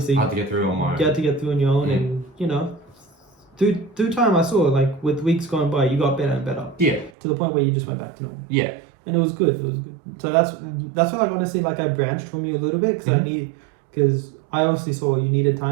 I had to get through on my own. You had to get through on your own, and you know, through time, I saw like with weeks going by, you got better and better. Yeah. To the point where you just went back to normal. Yeah. And it was good. So that's why, like, honestly, like I branched from you a little bit because I obviously saw you needed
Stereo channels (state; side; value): drops out; left; at 7.1 s